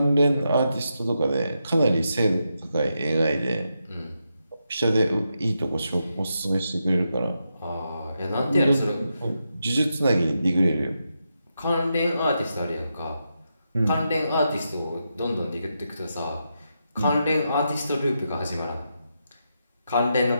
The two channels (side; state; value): both; inverted; correlation -0.85